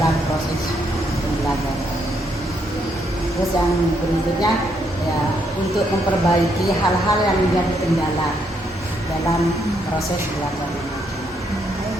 proses pembelajaran. Terus yang berikutnya ya untuk memperbaiki hal-hal yang menjadi kendala dalam proses belajar mengajar.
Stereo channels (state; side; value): normal; both; correlation 0.75